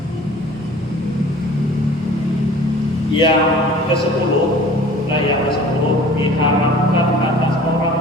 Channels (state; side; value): normal; both; correlation 0.46